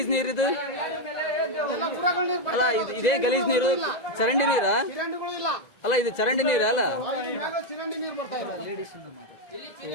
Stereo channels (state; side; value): late; right; 2.0 ms